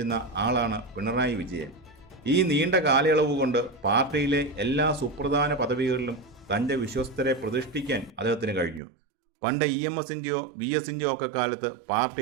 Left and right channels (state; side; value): drops out; left; at 8.8 s